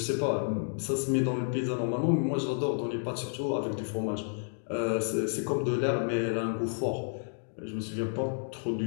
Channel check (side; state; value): right; silent; digital silence